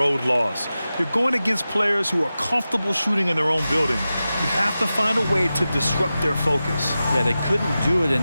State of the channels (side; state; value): both; inverted; correlation -0.94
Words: loss. You're going against players who are comfortable shooting in their own building. You have to find a way to disrupt their focus. Yeah, they couldn't do it